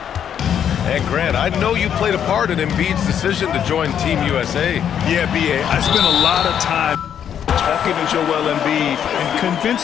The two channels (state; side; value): quieter; right; 8.9 dB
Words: And Grant, I know you played a part in Embiid's decision to join Team USA. Yeah, B.A., I spent a lot of time talking to Joel Embiid and